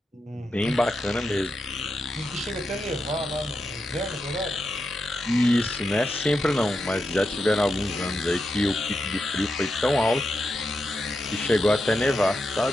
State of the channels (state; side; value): normal; both; correlation 0.87